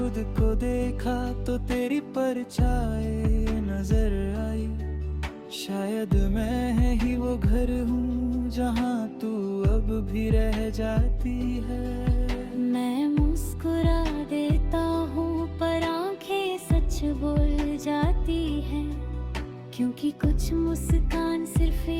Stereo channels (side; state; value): both; identical; correlation 1.00